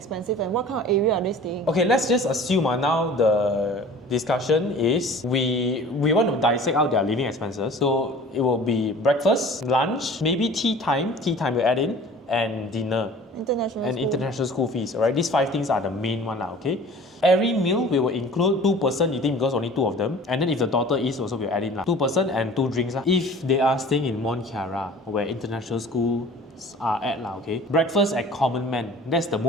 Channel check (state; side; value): normal; both; correlation 0.45